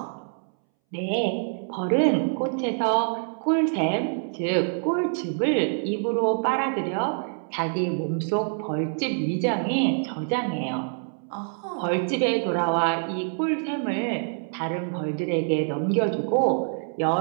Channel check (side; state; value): left; silent; 61 dB below the other